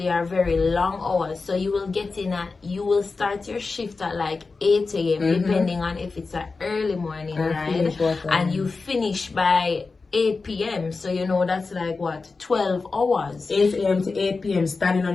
are very long hours. So you will get in you will start your shift at like 8 a.m. depending on if it's an early morning ride, and you finish by 8 p.m. So you know that's like what, 12 hours. 8 a.m. to 8 p.m. standing on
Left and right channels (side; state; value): right; quieter; 4.1 dB